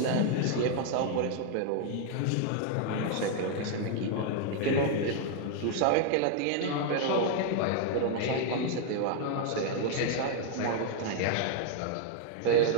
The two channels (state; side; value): different; both; correlation 0.00